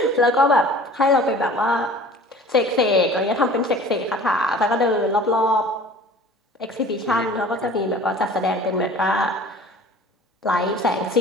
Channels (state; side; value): normal; both; correlation 0.45